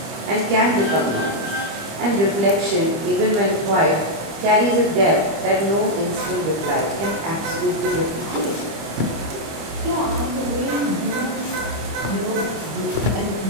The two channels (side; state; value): left; late; 25 ms